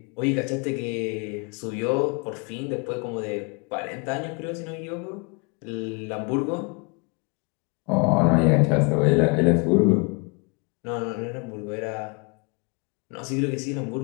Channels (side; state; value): right; quieter; 32.0 dB